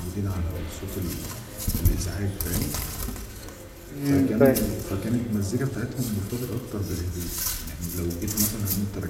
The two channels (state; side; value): identical; both; correlation 1.00